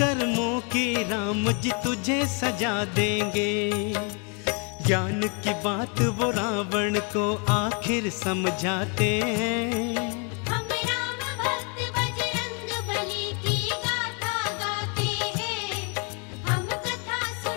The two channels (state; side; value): quieter; right; 36.6 dB